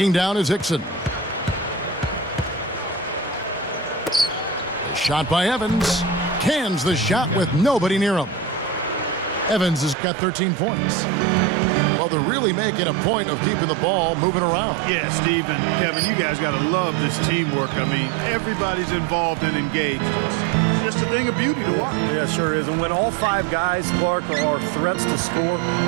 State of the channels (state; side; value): drops out; left; at 10.0 s